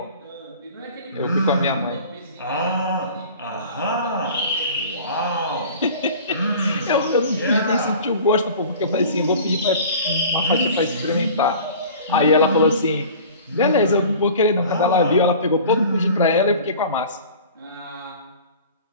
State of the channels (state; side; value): inverted; both; correlation -0.43